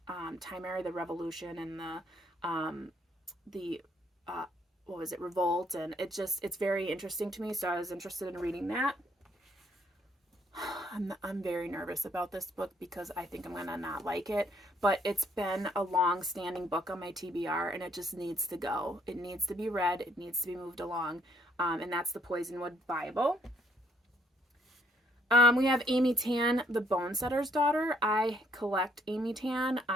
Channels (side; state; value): both; normal; correlation 0.67